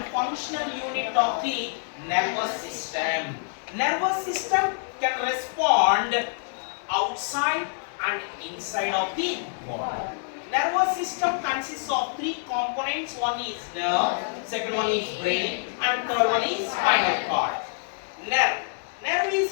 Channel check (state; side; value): silent; right; 61 dB below the other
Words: functional unit of the nervous system. Nervous system can respond outside and inside of the body. Nervous system consists of three components. One is nerve, second one is brain, and third one is spinal cord. Nerve. Nerve